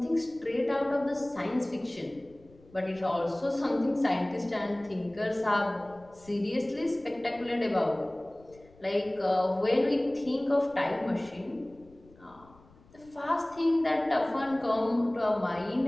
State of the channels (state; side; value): noise; left; rumble, 26 dB below the sound